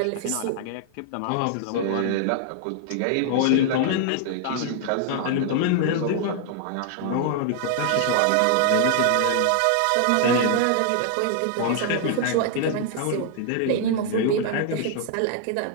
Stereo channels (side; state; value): both; different; correlation 0.00